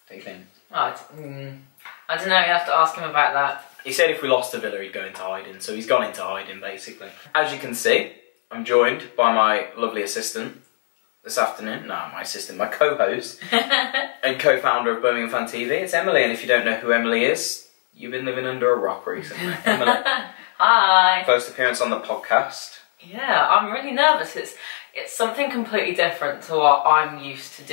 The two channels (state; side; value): silent; right; 64 dB below the other